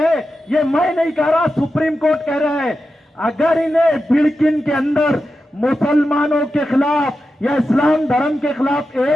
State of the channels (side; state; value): both; normal; correlation 0.90